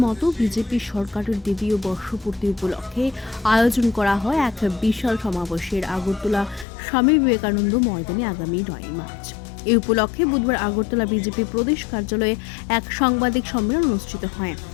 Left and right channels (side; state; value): right; drops out; at 6.7 s